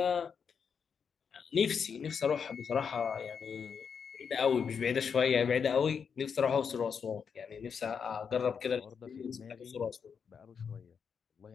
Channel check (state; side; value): quieter; right; 6.6 dB